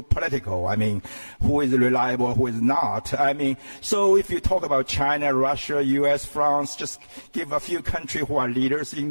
I mean, who is reliable, who is not. So if you talk about China, Russia, U.S., France, just give a few countries who are leaders in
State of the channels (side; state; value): both; inverted; correlation -1.00